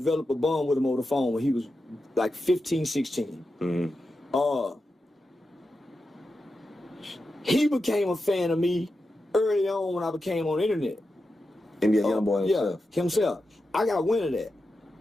a bond with him over the phone when he was like 15, 16. Mm-hmm. He became a fan of me early on when I became on the internet. NBA YoungBoy himself. Yeah, himself. I got wind of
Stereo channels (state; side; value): normal; both; correlation 0.90